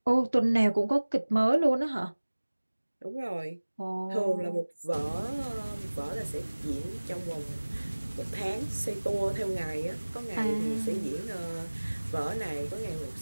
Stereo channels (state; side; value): inverted; both; correlation -1.00